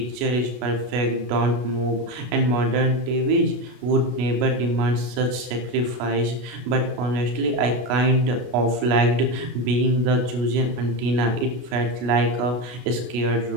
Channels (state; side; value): late; left; 32 ms